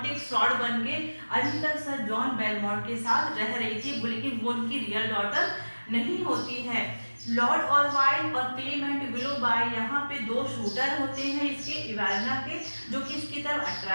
एक फ्रॉड बन के अभी तक सर जॉन बेलमोंट के साथ रह रही थी, लेकिन वो उनकी रियल डॉटर नहीं होती है। लॉर्ड ऑरवाइल और क्लेमेंट विलोबाई यहाँ पे 2 शूटर होते हैं इसके इवेलिना के, जो कि इसकी तरफ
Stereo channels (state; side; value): inverted; both; correlation -1.00